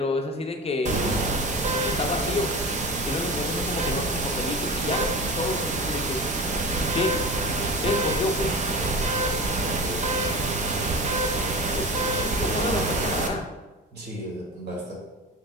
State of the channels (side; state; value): both; normal; correlation 0.29